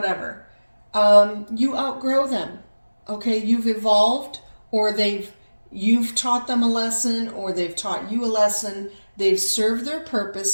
You outgrow them, okay? You've evolved, or you've taught them a lesson, or they've taught you a lesson. They've served their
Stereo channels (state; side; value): inverted; both; correlation -1.00